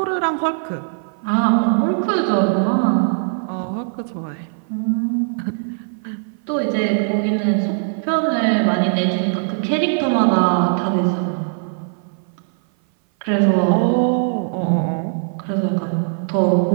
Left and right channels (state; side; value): silent; left; 58 dB below the other